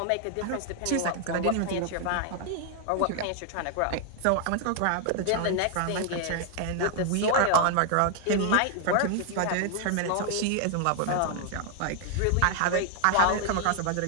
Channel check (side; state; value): both; different; correlation 0.00